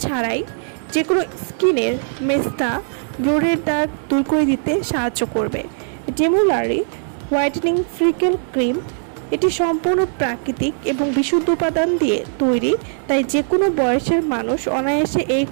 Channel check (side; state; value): left; silent; digital silence